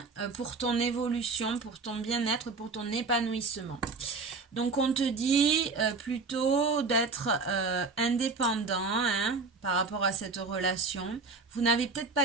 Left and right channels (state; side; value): quieter; left; 4.2 dB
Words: pour ton évolution, pour ton bien-être, pour ton épanouissement. Donc, on te dit plutôt d'être indépendant, hein, par rapport à cette relation. Vous n'avez peut-être